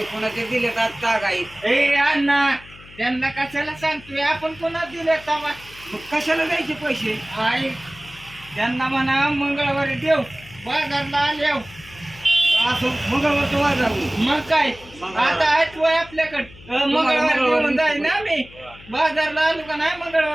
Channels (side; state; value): left; noise; hum, 21 dB below the sound